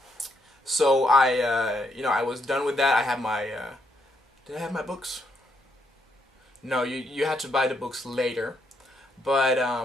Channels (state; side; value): normal; both; correlation 0.76